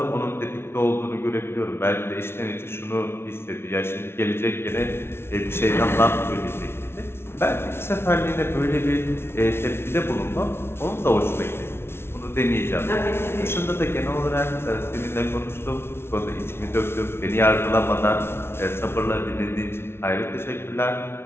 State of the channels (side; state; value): right; late; 0.12 ms